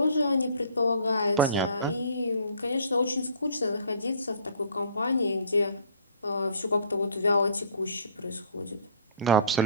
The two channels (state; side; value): inverted; both; correlation -0.51